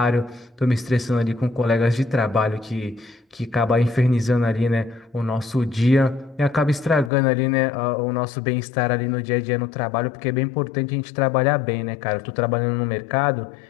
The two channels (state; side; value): drops out; right; at 7.1 s